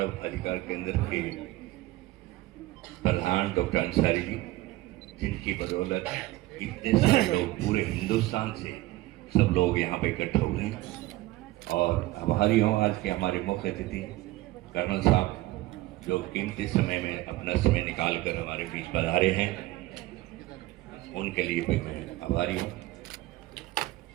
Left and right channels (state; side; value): quieter; left; 17.9 dB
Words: अधिकार केंद्र के प्रधान डॉक्टर अंसारी जी, जिनकी बदौलत इतने सारे लोग पूरे हिंदुस्तान से सब लोग यहाँ पे इकट्ठा हुए हैं। और आभारी हूँ आज के हमारे मुख्य अतिथि कर्नल साहब जो कीमती समय में अपना समय निकाल कर हमारे बीच पधारे हैं, उनके लिए भी मैं आभारी हूँ।